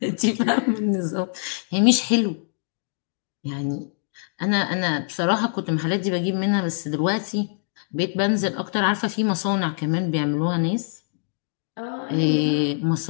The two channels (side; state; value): right; silent; digital silence